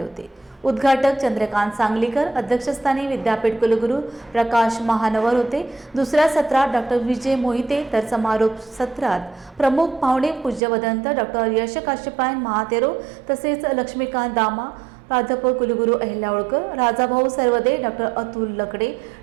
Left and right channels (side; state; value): left; drops out; at 10.6 s